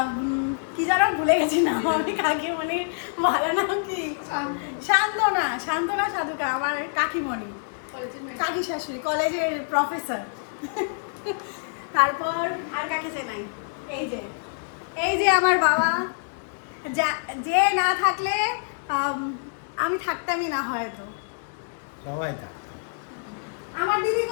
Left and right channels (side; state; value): right; silent; digital silence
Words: কি যেন ভুলে গেছি না, আমি কাকিমণি ভালো নাম কি, শান্তনা, শান্তনা সাধুকা, আমার কাকিমণি, কাকি শাশুড়ি, কলেজের প্রফেসর। তারপর আর কাকে চেনাই, এই যে আমার বাবা, যে না থাকলে আমি থাকতামই না হয়তো। সবাই আমার দিদি